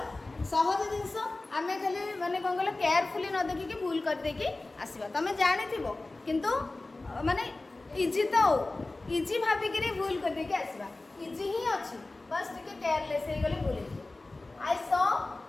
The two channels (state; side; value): quieter; right; 3.1 dB